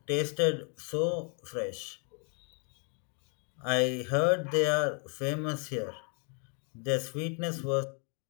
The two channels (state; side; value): quieter; right; 39.8 dB